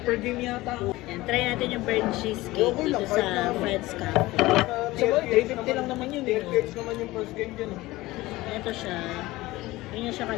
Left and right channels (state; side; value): quieter; right; 19.0 dB